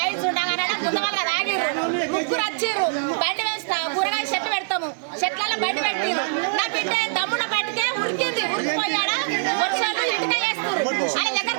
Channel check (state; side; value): silent; left; digital silence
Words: ఉండగానే గుందవాళ్ళ రాగిర్రు. 3 వచ్చిర్రు. బండి వేస్తా కూరగాయ చెట్టు పెడతాము. చెట్లలో బండి పెట్టిరు. నా బిడ్డ దమ్మున పట్టుకే ఉరికింది. ఉరికిపోయాడా వర్షాలు ఇంటికే వేస్తారు. ఆయన దగ్గర